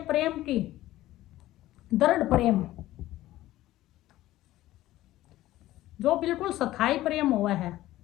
प्रेम की, दृढ़ प्रेम, जो बिल्कुल स्थायी प्रेम हुआ है,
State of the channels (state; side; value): quieter; right; 15.5 dB